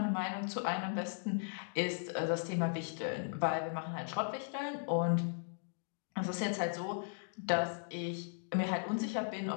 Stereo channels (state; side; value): silent; right; digital silence